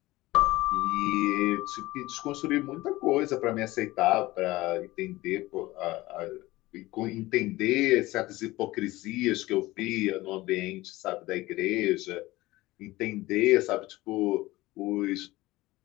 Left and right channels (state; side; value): quieter; right; 18.9 dB